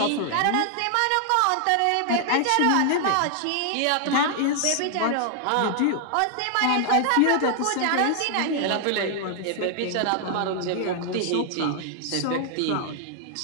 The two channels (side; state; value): both; different; correlation 0.00